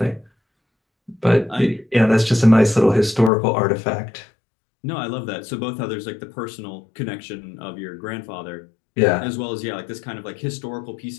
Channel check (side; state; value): right; drops out; at 3.3 s